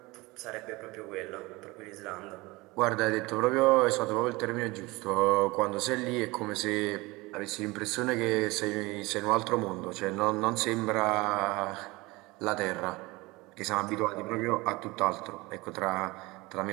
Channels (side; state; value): left; quieter; 22.6 dB